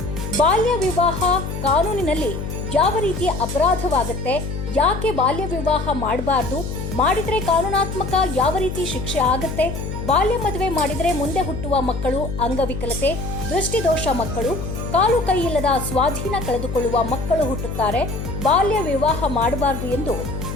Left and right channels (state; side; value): noise; left; hum, 6 dB below the sound